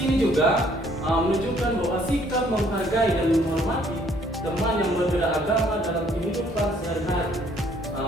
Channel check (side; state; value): both; normal; correlation 0.63